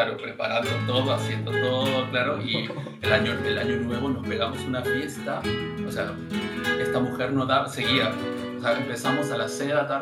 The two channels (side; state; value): both; identical; correlation 1.00